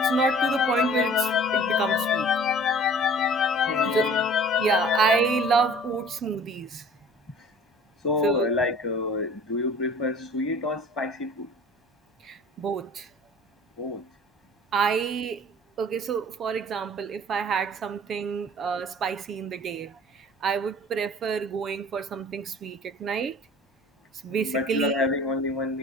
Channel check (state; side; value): normal; both; correlation 0.47